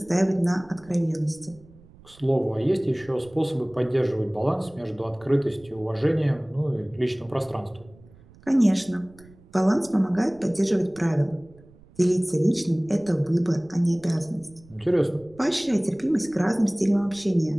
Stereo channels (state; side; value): noise; right; rumble, 25 dB below the sound